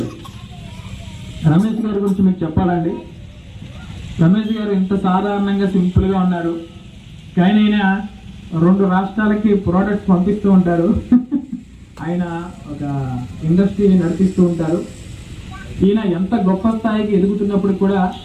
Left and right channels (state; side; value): identical; both; correlation 1.00